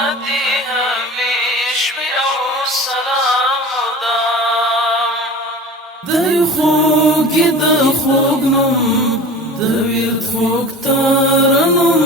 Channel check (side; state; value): both; normal; correlation 0.36